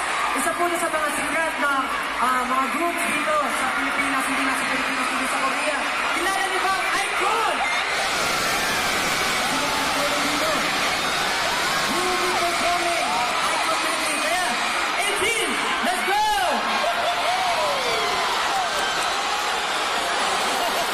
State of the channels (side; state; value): both; identical; correlation 1.00